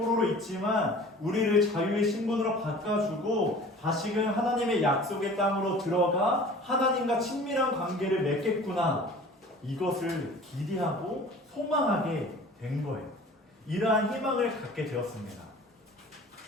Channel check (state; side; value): normal; both; correlation 0.44